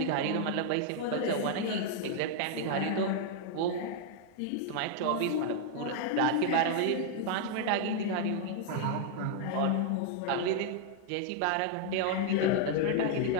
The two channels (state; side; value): different; both; correlation -0.01